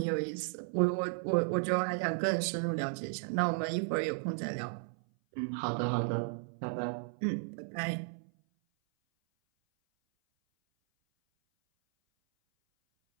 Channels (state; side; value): silent; left; 55 dB below the other